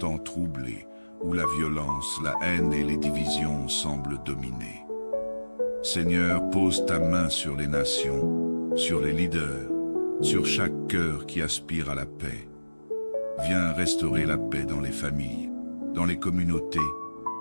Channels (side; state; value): both; inverted; correlation -1.00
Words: troublé, où la violence, la haine et les divisions semblent dominer. Seigneur, pose ta main sur les nations, sur les leaders, sur chaque cœur qui aspire à la paix. Viens restaurer la paix dans les familles, dans les communautés